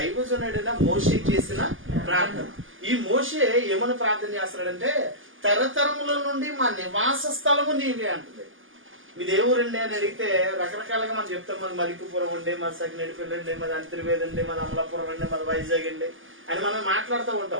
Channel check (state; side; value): late; left; 0.58 ms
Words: మోషే చేసిన ప్రార్థన. ఈ మోషే ఏమని ప్రార్థన చేస్తున్నాడంటే, తరతరముల నుండి మా నివాస స్థలము నీవే అంటుంది. మీ దేవురండి అని అడిగితే రకరకాలుగా మనం చెప్తాం. మాది మలికిపురం ఉండే, మాది సకినేడిపల్లి అండి, మాది అంతర్వేది అండి, మాది అమలాపురం అండి, మాది వైజాగ్ అండి అని మనం మాట్లాడుతూ